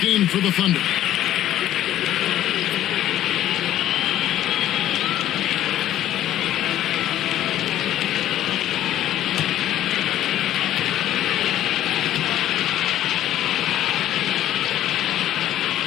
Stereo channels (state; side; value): quieter; right; 12.6 dB